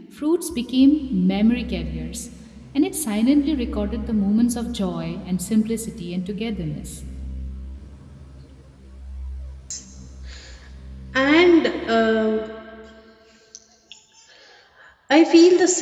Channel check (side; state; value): both; identical; correlation 1.00